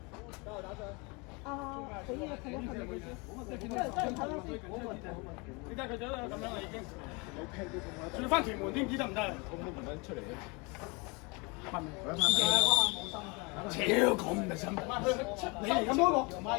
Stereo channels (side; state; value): right; quieter; 28.9 dB